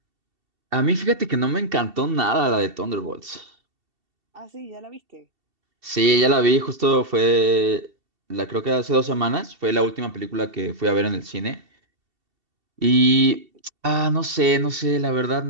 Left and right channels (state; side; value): late; left; 2.7 ms